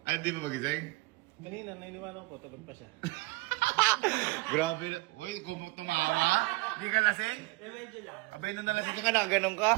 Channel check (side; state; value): left; quieter; 23.8 dB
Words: Ay, hindi mo magising? Kanina, nainiwala ko, tulog pa siya. Grabe na. Uy, kung tumawa. Hindi ka lasing? Medyo lang. Abay, nung nalasing ka, nakaganon ka.